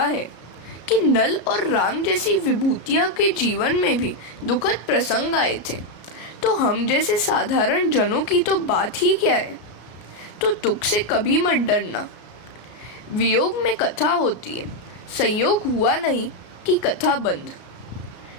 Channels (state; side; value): late; right; 33 ms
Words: है कि नल और राम जैसी विभूतियां के जीवन में भी दुखद प्रसंग आए थे, तो हम जैसे साधारण जनों की तो बात ही क्या है। तो दुख से कभी मत डरना। वियोग में कथा होती है, संयोग हुआ नहीं कि कथा बंद।